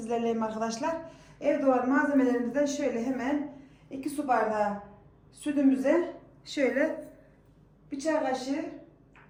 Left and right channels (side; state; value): both; identical; correlation 1.00